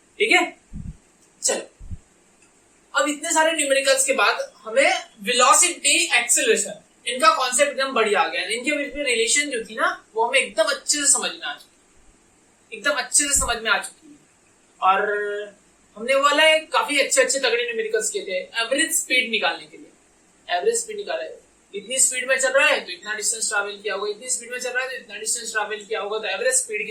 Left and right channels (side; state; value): both; identical; correlation 1.00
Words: ठीक है, चलो अब इतने सारे न्यूमेरिकल्स के बाद हमें वेलोसिटी एक्सेलरेशन इनका कॉन्सेप्ट एकदम बढ़िया आ गया। इनके बीच में रिलेशन जो थी ना वो हमें एकदम अच्छे से समझ में आ चुकी, एकदम अच्छे से समझ में आ चुकी है। और हमने वो वाला काफी अच्छे तगड़े न्यूमेरिकल्स किए थे एवरेज स्पीड निकालने के लिए। एवरेज स्पीड निकाला है, इतनी स्पीड में चल रहा है तो इतना डिस्टेंस ट्रैवल किया होगा, इतनी स्पीड में चल रहा है तो इतना डिस्टेंस ट्रैवल किया होगा, तो एवरेज स्पीड